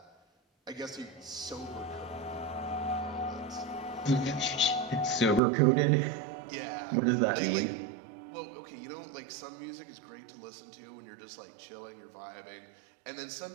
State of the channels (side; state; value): left; drops out; at 5.4 s